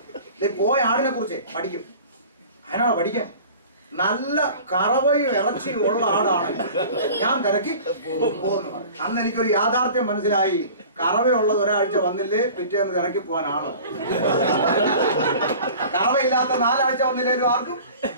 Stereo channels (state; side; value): inverted; both; correlation -0.42